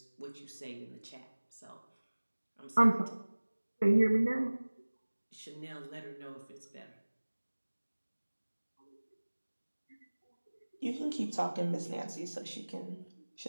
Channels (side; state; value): both; inverted; correlation -1.00